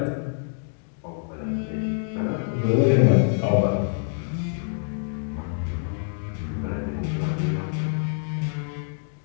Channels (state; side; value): silent; right; digital silence